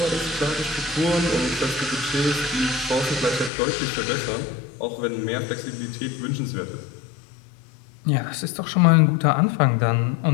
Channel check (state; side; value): drops out; right; at 3.5 s